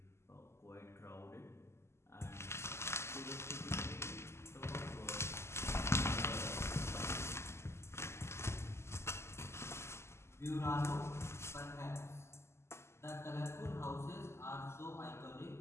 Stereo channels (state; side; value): late; right; 0.13 ms